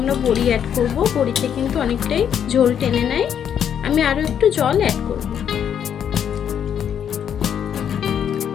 বড়ি অ্যাড করব। বড়িতে কিন্তু অনেকটাই ঝোল টেনে নেয়। আমি আরও একটু জল অ্যাড করব।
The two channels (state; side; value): quieter; right; 8.7 dB